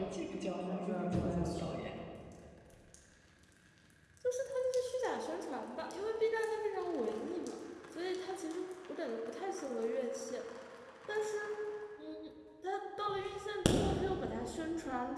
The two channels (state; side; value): identical; both; correlation 1.00